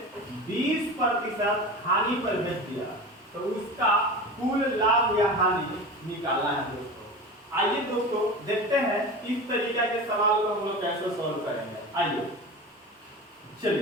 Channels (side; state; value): both; normal; correlation 0.31